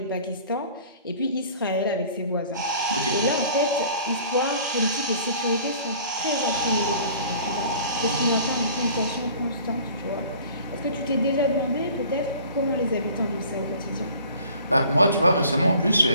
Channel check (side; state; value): both; inverted; correlation -0.49